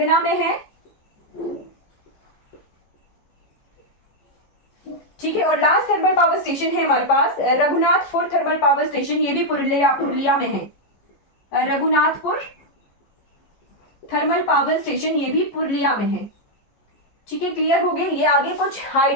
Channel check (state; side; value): late; right; 14 ms